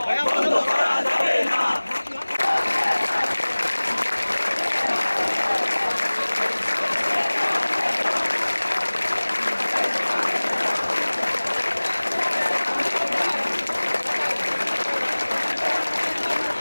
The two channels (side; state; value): both; inverted; correlation -1.00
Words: বন্ধ করা যাবে না।